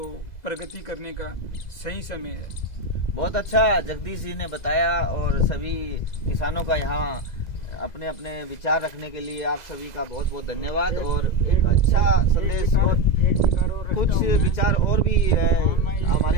प्रगति करने का सही समय है। बहुत अच्छा जगदीश जी ने बताया और सभी किसानों का यहाँ अपने अपने विचार रखने के लिए आप सभी का बहुत बहुत धन्यवाद। और एक अच्छा संदेश और कुछ विचार और भी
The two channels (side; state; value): right; late; 2.0 ms